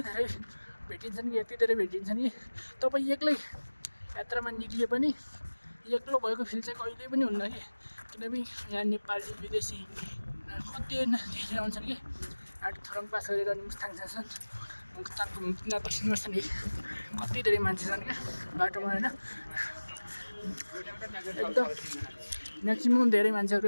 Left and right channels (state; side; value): inverted; both; correlation -1.00